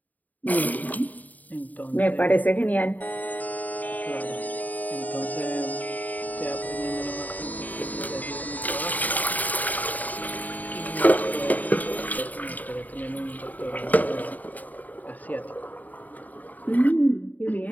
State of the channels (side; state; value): right; late; 0.079 ms